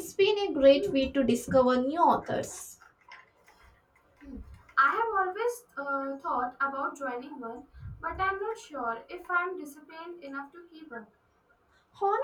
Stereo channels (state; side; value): identical; both; correlation 1.00